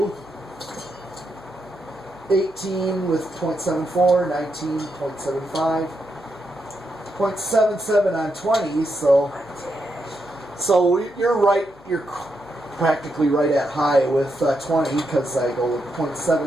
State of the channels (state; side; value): noise; left; hum, 26 dB below the sound